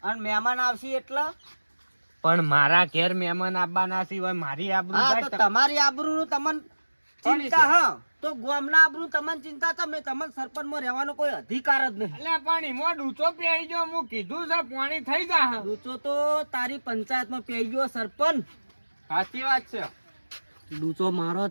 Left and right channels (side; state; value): both; inverted; correlation -1.00